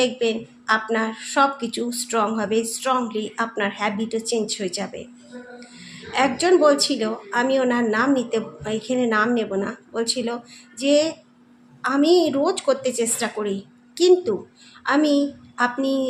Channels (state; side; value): identical; both; correlation 1.00